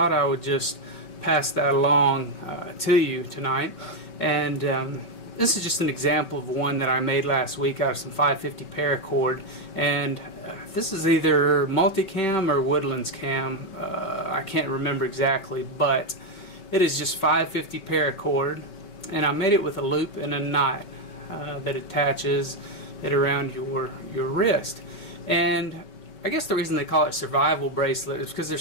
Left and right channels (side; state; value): right; late; 5.2 ms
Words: I would just pass that along to you tonight. And this is just an example of one that I made last week out of some 550 paracord, and this is either multicam or woodlands cam. I can't remember exactly, but it is just 550 paracord, and I made it with a loop and a knot that attaches it around your wrist. And I guess the reason they call it survival bracelet is because